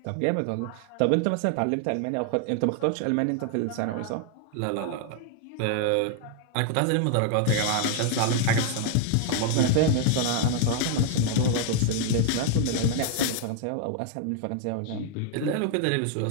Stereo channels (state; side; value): different; both; correlation 0.00